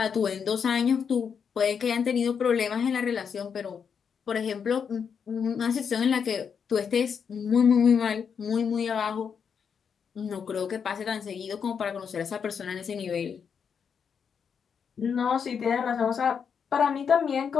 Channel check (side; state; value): right; quieter; 6.8 dB